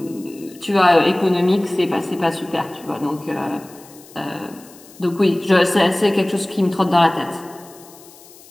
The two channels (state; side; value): noise; left; hiss, 23 dB below the sound